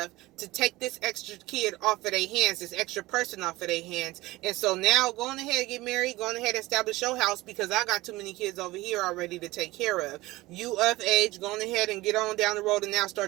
to take this extra kid off of their hands, this extra person off of their hands. And so now go on ahead and get married, go on ahead and establish your house, because I got too many kids over here already to take care of. You of age, go on ahead and get on down the road and now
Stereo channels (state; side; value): quieter; left; 19.2 dB